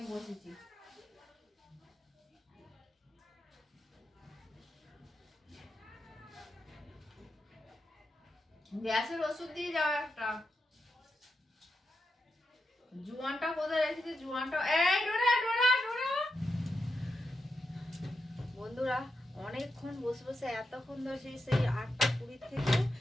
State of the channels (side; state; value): both; normal; correlation 0.86